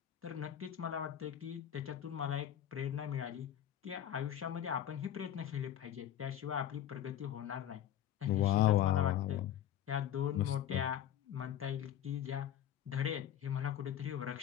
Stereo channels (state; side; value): quieter; right; 10.8 dB